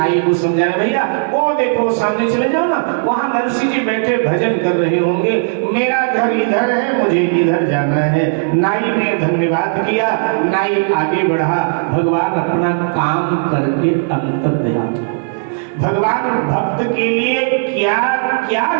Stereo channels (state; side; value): silent; left; digital silence